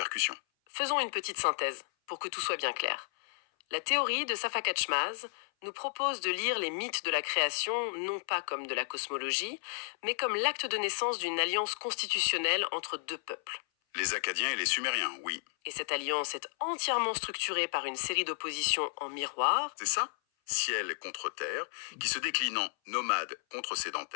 Faisons une petite synthèse, pour que tout soit bien clair. La théorie de Safakatchmaz nous propose de lire les mythes de la création non pas comme de la cosmologie, mais comme l'acte de naissance d'une alliance constitutionnelle entre deux peuples. Les Acadiens et les Sumériens, oui. Et cette alliance est entièrement structurée par une série d'oppositions en miroir. C'est ça? Ciel contre terre, qui se décline en nomade contre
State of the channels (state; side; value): silent; right; 56 dB below the other